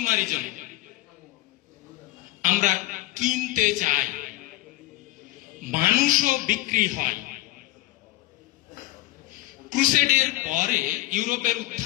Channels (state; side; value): quieter; right; 17.7 dB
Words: আমরা কিনতে চাই, মানুষও বিক্রি হয়। ক্রুসেডের পরে ইউরোপের